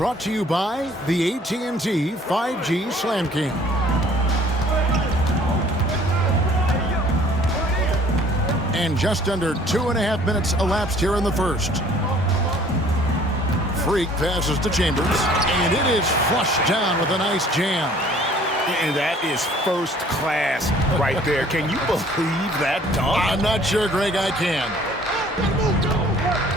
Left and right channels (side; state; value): both; normal; correlation 0.55